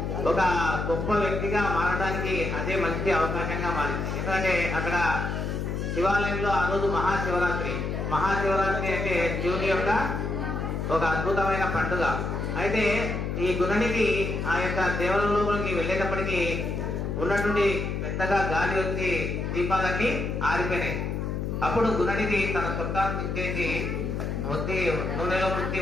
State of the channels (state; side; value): noise; left; hum, 2 dB below the sound